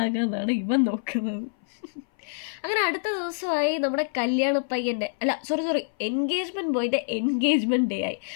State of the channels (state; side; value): silent; right; 58 dB below the other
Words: ഇവൻ നോക്കുന്നത്. അങ്ങനെ അടുത്ത ദിവസമായി നമ്മുടെ കല്യാണ പയ്യൻ്റെ എൻഗേജ്മെൻറ്റ് ബോയിൻ്റെ എൻഗേജ്മെൻറ്റ് ഡേ ആയി.